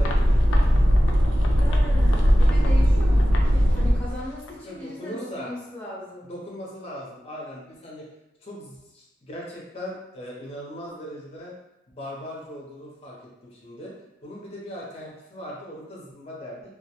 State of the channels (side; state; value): both; normal; correlation 0.95